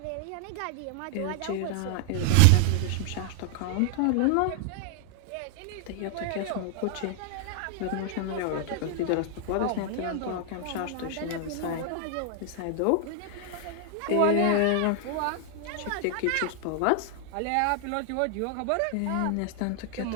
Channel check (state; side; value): different; both; correlation 0.00